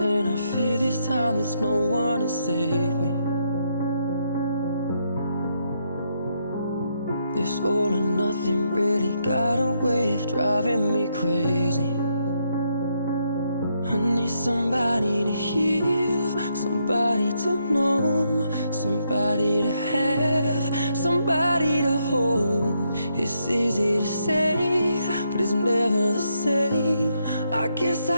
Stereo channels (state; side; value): inverted; both; correlation -0.77